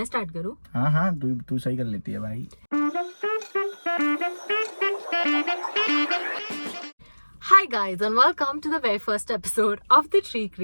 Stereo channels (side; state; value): both; inverted; correlation -1.00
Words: start करूं? हाँ तू सही कर लेती है भाई। Hi guys and welcome to the very first episode of